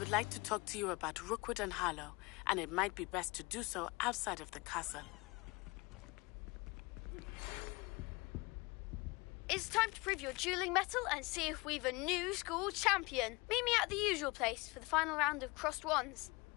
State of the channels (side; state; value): right; quieter; 25.1 dB